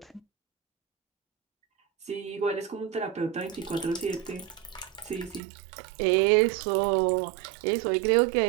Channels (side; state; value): left; drops out; at 5.4 s